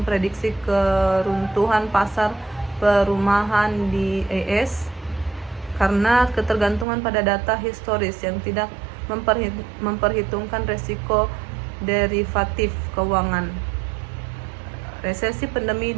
keruntuhan pasar perumahan di AS karena ketergantungan pada data historis yang tidak memperhitungkan resiko derivatif keuangan. Resesi pandemi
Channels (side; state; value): left; drops out; at 6.9 s